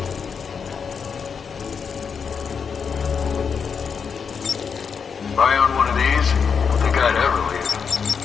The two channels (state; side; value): quieter; right; 6.2 dB